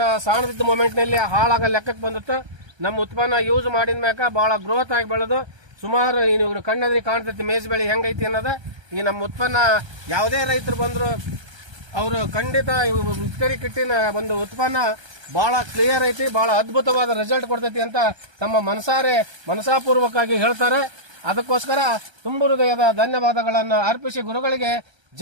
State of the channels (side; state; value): left; late; 1.3 ms